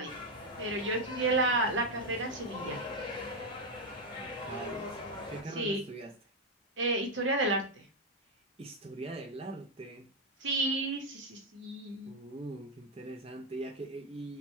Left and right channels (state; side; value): normal; both; correlation 0.04